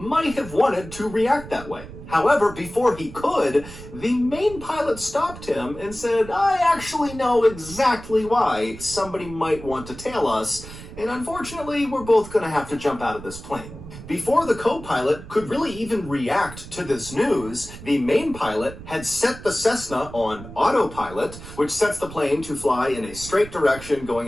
have wanted to react that way. However, before he could, the main pilot stopped him and said, I actually know exactly why somebody might want to tail us, and unfortunately, we're both going to have to jump out of this plane. Before the co-pilot could really even react to this news, the main pilot had set the Cessna on autopilot, which sets the plane to fly in a straight direction, going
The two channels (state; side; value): noise; right; rumble, 14 dB below the sound